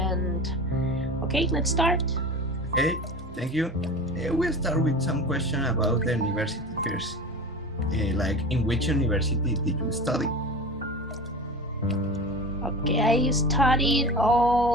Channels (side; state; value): both; normal; correlation 0.31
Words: okay, let's start. Okay, thank you. We'll start with some question about the university first. Like, in which university did you study? Okay, I studied